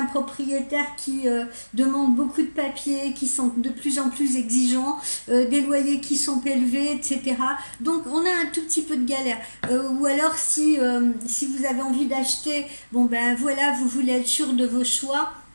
propriétaires qui demandent beaucoup de papiers, qui sont de plus en plus exigeants, des loyers qui sont élevés, etc. Donc on a un tout petit peu de galère. Ou alors si vous avez envie d'acheter, bon ben voilà, vous voulez être sûr de vos choix.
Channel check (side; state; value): both; inverted; correlation -1.00